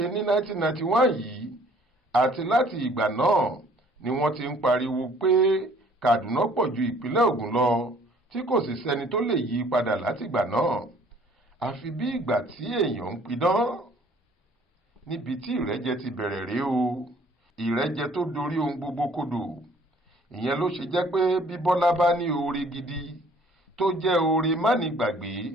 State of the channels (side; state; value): both; normal; correlation 0.57